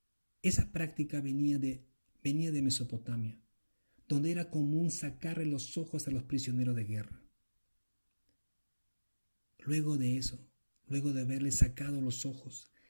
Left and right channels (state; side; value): inverted; both; correlation -1.00